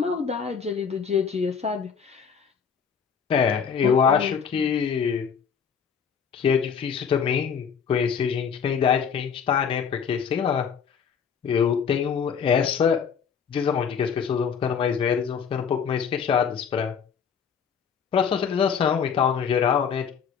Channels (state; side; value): quieter; right; 6.9 dB